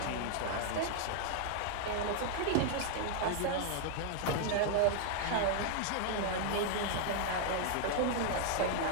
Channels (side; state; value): both; different; correlation 0.00